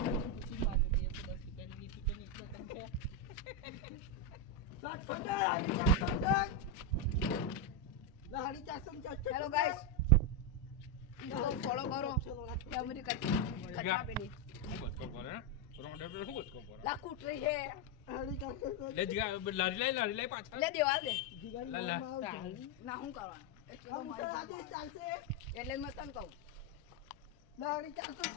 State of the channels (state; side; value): normal; both; correlation 0.03